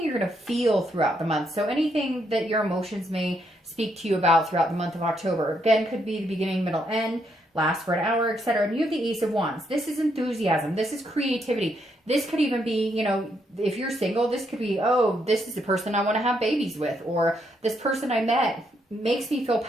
you're going to feel throughout the month. So anything that your emotions may speak to you about throughout the month of October. Again, could be the beginning, middle, end, last for an hour, etc. And you have the Ace of Wands. This is enthusiasm. This is creativity. This could even be, you know, if you're single, this could be, oh, this is the person I want to have babies with, or this person I met makes me feel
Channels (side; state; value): both; normal; correlation 0.76